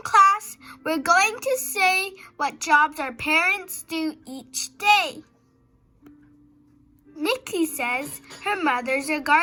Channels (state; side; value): identical; both; correlation 1.00